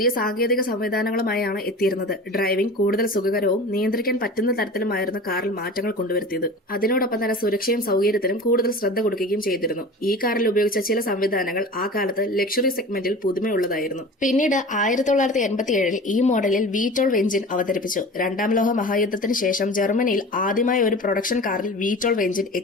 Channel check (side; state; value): both; normal; correlation 0.36